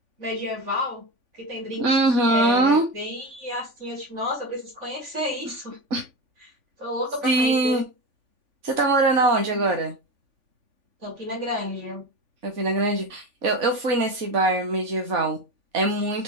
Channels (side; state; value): left; late; 3.5 ms